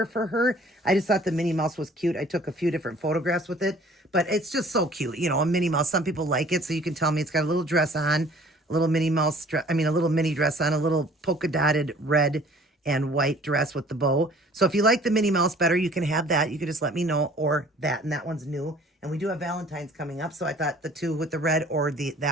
for her. I just thought the Minnie Mouse was cute. I took a few different photographs with it, but it's just so cute. A Minnie Mouse. Some people like it, so you can tell me. It's got a little dress on, a little Minnie Mouse, a little mini dress on, a little polka dotted red and white dress with the bow. So if you like the Minnie Mouse better, you can have that. You can just let me know, or that, and that one's new. And we do have Valentine's coming up, so I thought the two with the red or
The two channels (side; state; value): both; normal; correlation 0.52